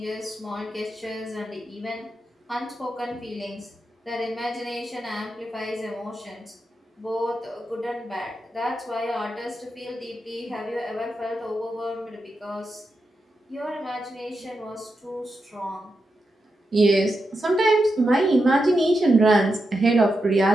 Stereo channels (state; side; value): normal; both; correlation 0.87